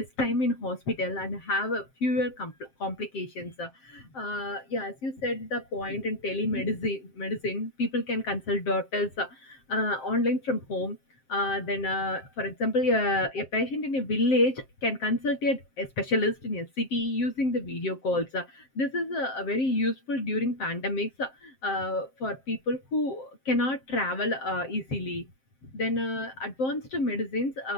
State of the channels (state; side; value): late; right; 7.6 ms